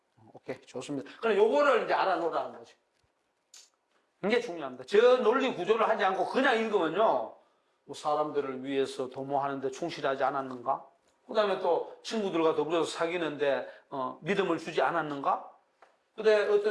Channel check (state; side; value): identical; both; correlation 1.00